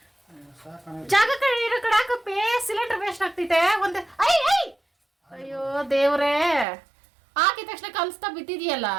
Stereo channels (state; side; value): drops out; left; at 6.7 s